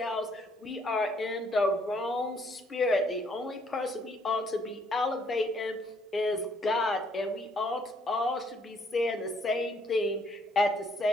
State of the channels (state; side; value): normal; both; correlation 0.67